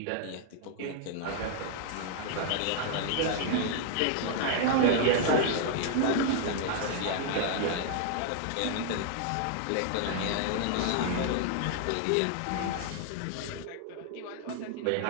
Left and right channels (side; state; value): both; different; correlation 0.00